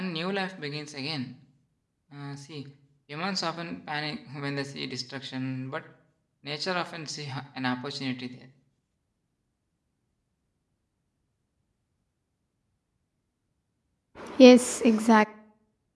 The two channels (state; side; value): identical; both; correlation 1.00